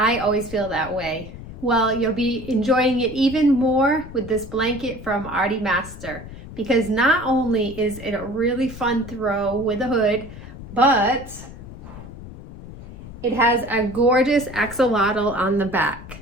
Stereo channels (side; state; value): left; noise; rumble, 14 dB below the sound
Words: always feel that way. Well, you'll be enjoying it even more with this blanket from ARTIEMASTER, because not only is it a really fun throw with a hood, but it has a gorgeous axolotl on the back.